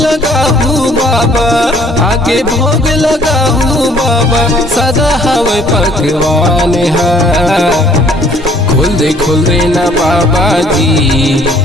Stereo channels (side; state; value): both; normal; correlation 0.59